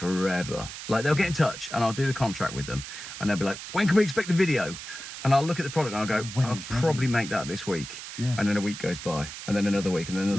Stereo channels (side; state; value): right; noise; hiss, 10 dB below the sound